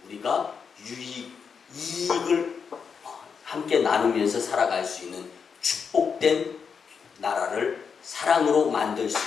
우리가 이익을 함께 나누면서 살아갈 수 있는 축복된 나라를 사랑으로 만들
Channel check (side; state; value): right; quieter; 6.2 dB